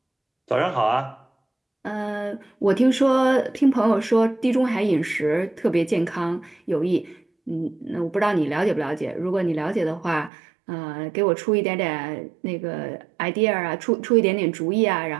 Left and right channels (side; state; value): left; drops out; at 10.3 s